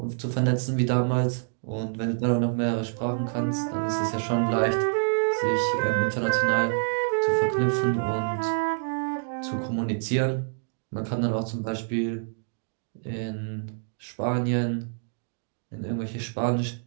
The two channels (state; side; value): silent; left; digital silence